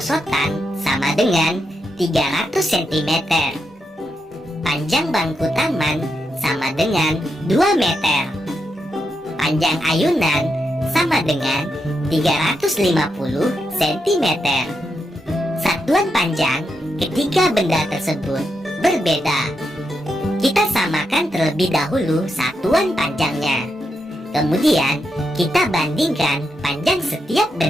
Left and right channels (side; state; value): both; normal; correlation 0.84